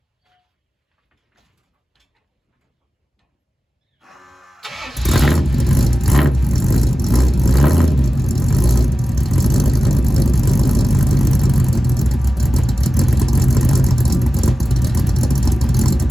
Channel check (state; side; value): normal; both; correlation 0.94